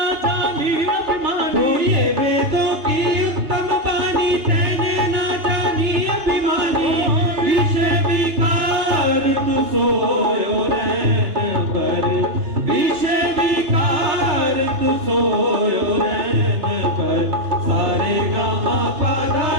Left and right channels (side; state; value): left; late; 2.9 ms